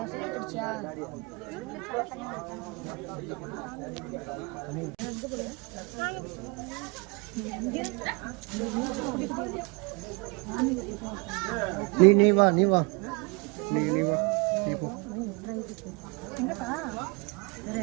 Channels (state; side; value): quieter; left; 30.0 dB